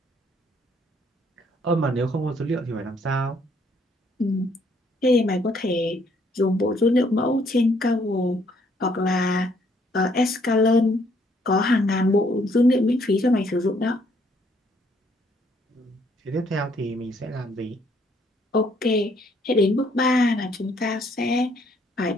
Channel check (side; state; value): both; normal; correlation 0.67